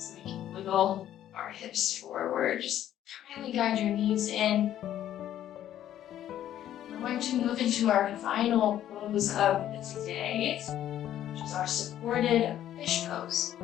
we can wiggle our hips forward. Just kindly guide your knees in. We're going to move into our final pose of the day, which is our supported fish pose.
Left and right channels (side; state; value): right; quieter; 11.6 dB